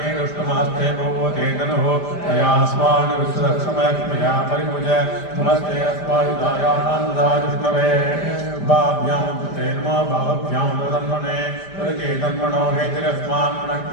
दुष्टमास्ते भगवते तनुः तयास्मान् विश्वक्षमयक्ष्मया परिमुज नमस्ते अस्मायुधायानामुदाजुष्णवे भाभ्यां कृते नमो भावभ्यां तन्मने परिके तन्मनो हेतिरस्मान्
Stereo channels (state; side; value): late; right; 5.0 ms